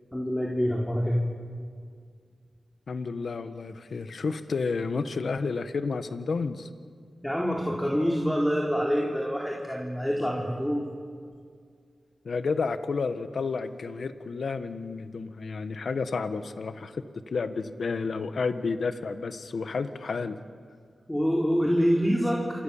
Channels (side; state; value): both; normal; correlation 0.95